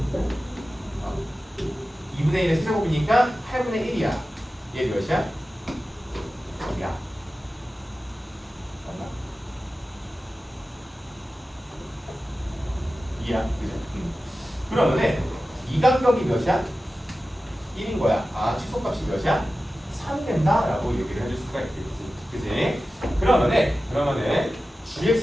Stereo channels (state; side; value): normal; both; correlation 0.94